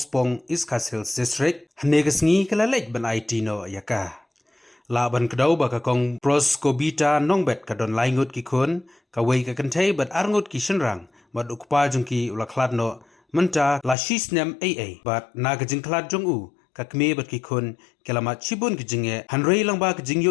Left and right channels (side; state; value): right; drops out; at 14.0 s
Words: Iskas Hills District hanegas ngi kalalej ban IT no ya ka laban kadaw ba ka kong pros kobita nongbet ka don laingut ki kun ka wei ka kantay bat arngut ki shenrang bat ukpa jong ki ulaklad no menta la shisnem AA bat nagajing klad jong u kakme bat ki kun kelamat chibun kijinge hanrei lang ba kijing yo